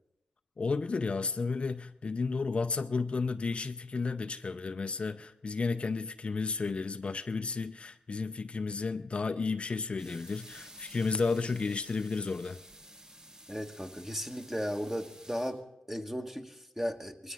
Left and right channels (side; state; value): right; quieter; 3.4 dB